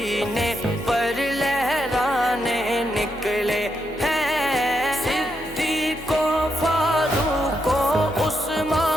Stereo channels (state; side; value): normal; both; correlation 0.82